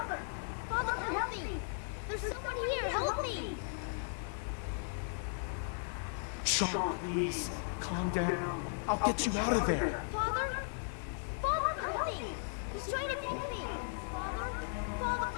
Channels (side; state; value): right; silent; digital silence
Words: Father, help me! There's someone here, help me! Sean, please, calm down. I'll get you out of there. Father? Father, help me! He's trying to kill me! Father? Father,